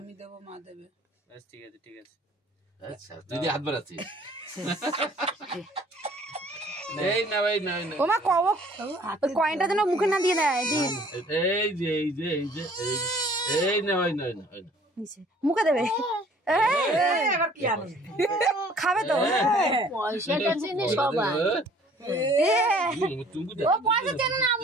দেবো, মা দেবে। বেশ ঠিক আছে ঠিক আছে। আচ্ছা তুই হাত বাড়াচ্ছিস। এই না ভাই না না ওমা কও কয়েনটা যেন মুখে না দিয়ে দেয়। এই যে এই যে এই যে এই না ভাই না না মুখে দেবে। এবার কি আনন্দ খাবে তো। পয়সাটা চেনে সবাই। ও পয়সা চেনে না,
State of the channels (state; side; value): normal; both; correlation 0.54